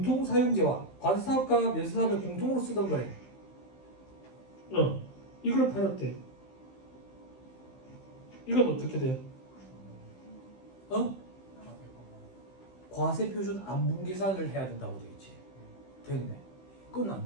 과세사업과 면세사업을 공통으로 쓰던 거래. 이걸 팔았대. 이건 어떻게 돼? 과세표준 안분계산을 해야 된다고 되어있지. 됐네.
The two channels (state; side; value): late; right; 15 ms